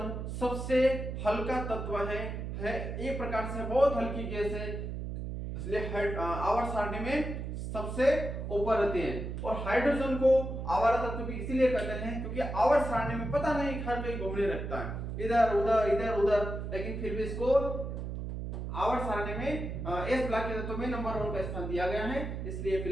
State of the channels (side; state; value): right; noise; hum, 5 dB below the sound